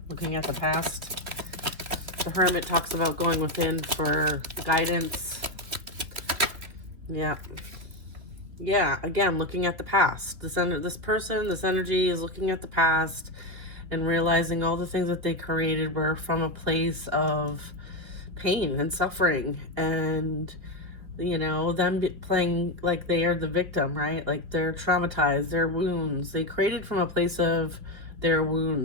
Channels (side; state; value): left; late; 2.8 ms